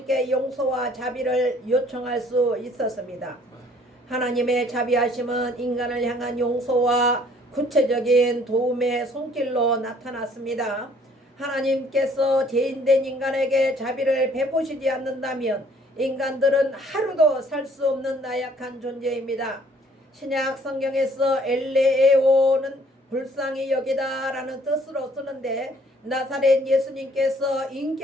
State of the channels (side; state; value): both; normal; correlation 0.59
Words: 용서와 자비를 요청할 수 있었습니다. 하나님의 자비하심은 인간을 향한 용서와 구체적인 도움의 손길로 나타났습니다. 하나님께서 죄인된 인간에게 자비를 베푸시지 않는다면 인간들은 하루도 살 수 없는 나약한 존재입니다. 신약 성경에서 엘레오는 불쌍히 여기다라는 뜻으로 쓰는데 나사렛 예수님께서